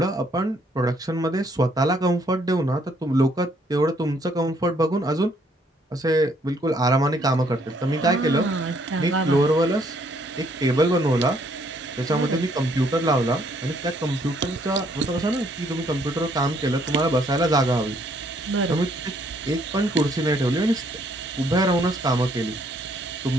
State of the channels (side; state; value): both; normal; correlation 0.67